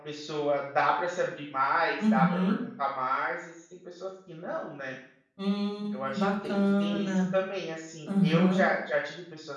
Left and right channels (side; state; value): both; identical; correlation 1.00